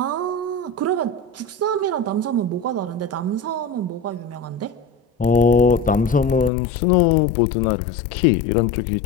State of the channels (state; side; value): drops out; right; at 6.5 s